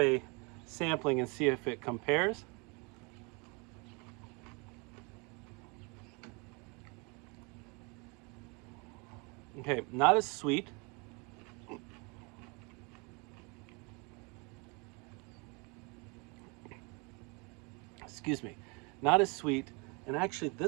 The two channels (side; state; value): left; quieter; 30.7 dB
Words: sampling and see if it compares. Okay, not as sweet. Excuse me. not as sweet, and actually